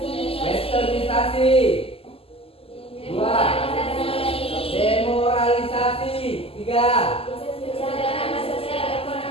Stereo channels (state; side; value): late; right; 0.28 ms